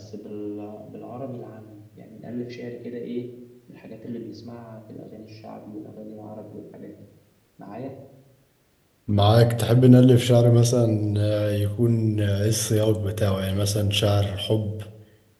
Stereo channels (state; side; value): identical; both; correlation 1.00